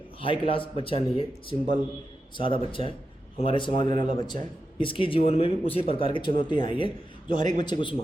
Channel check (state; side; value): normal; both; correlation 0.89